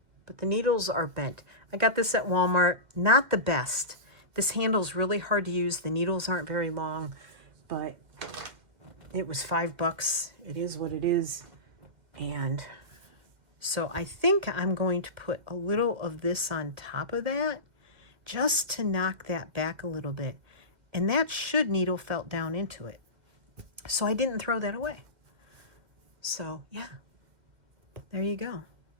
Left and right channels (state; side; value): late; left; 2.1 ms